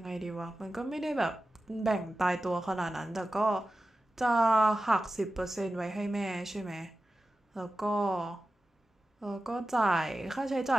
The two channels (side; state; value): both; normal; correlation 0.94